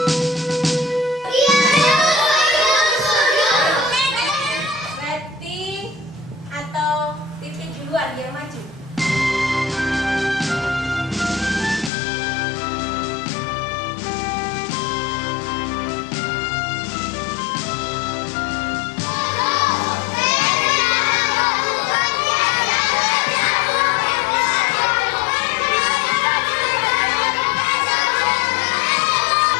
lagi yang maju.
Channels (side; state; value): right; drops out; at 11.9 s